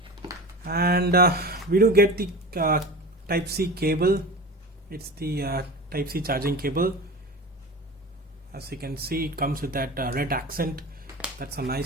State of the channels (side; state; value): both; normal; correlation 0.32